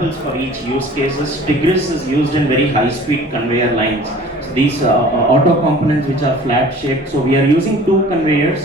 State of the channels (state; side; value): normal; both; correlation 0.47